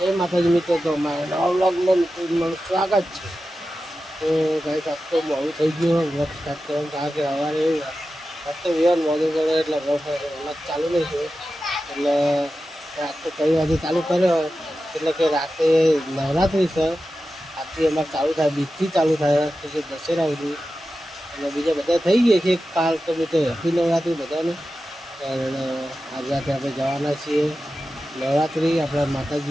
માતાજી મિત્રો, તો અમારા નવા વ્લોગમાં તમારું સ્વાગત છે. તો ગાઈસ આજ તો મોડું થઈ ગયું વ્લોગ સ્ટાર્ટ કરવાનું, કારણ કે સવારે આજ તો વિવાન મોડું કરે એટલે વ્લોગ ચાલુ નહીં થયો. એટલે આજ તો 3 વાગે ચાલુ કર્યો, એટલે કે રાતે નવરાત્રિ છે. આજથી અમારે ચાલુ થાય, બીજથી ચાલુ થાય તો કે દશેરા સુધી. અને બીજા બધા થઈ ગયા છે કાલ, તો મિત્રો હેપી નવરાત્રિ બધાને. અને આજે રાતે આપણે જવાના છીએ નવરાત્રિ આપણા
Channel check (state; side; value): normal; both; correlation 0.93